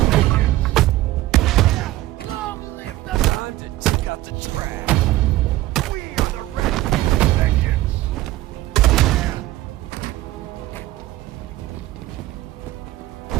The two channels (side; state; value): left; quieter; 16.3 dB